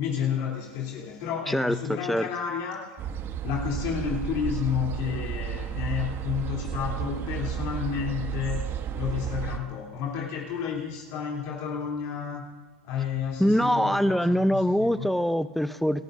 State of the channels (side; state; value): both; normal; correlation 0.67